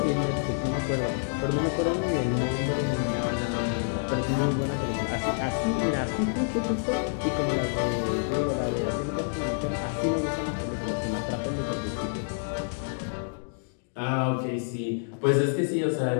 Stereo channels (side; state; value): right; silent; digital silence